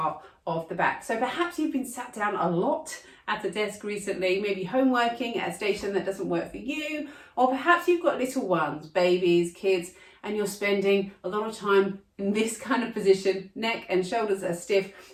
of the back. So perhaps you've been sat down a lot at a desk recently, maybe home working at a station that doesn't work for you, or perhaps you've got little ones, babies, kids, and you're spending a lot of time in this kind of position, neck and shoulders are stiff,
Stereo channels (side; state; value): both; identical; correlation 1.00